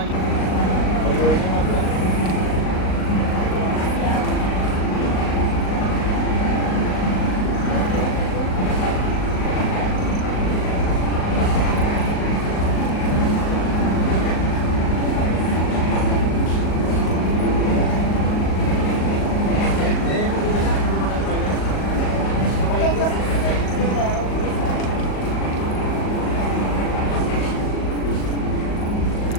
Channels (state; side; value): late; right; 38 ms